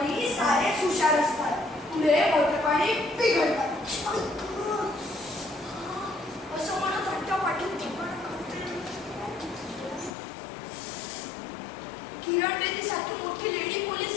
सारेच हुशार असतात, पुढे मोठेपणी बिघडतात. असं म्हणत हट्टापाटीत किरण बेदीसारखी मोठी लेडी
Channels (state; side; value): drops out; right; at 10.1 s